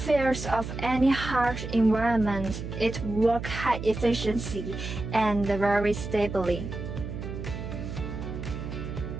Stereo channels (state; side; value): noise; right; hum, 7 dB below the sound